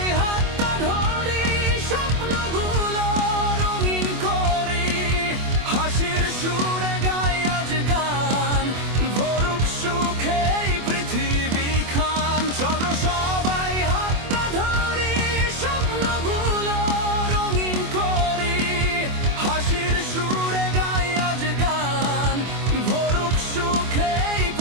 হাতটা ধরি, স্বপ্নগুলো রঙিন করি, হাসির সুরে গাই আজ গান, ভরুক সুখে এই পৃথিবী খান। চলো সবাই হাতটা ধরি, স্বপ্নগুলো রঙিন করি, হাসির সুরে গাই আজ গান, ভরুক সুখে এই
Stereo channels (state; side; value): late; left; 24 ms